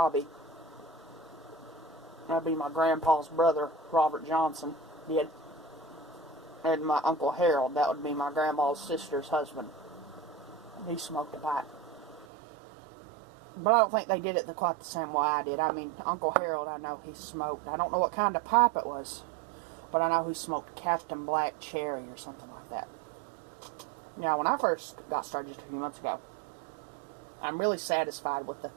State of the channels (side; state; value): left; drops out; at 12.2 s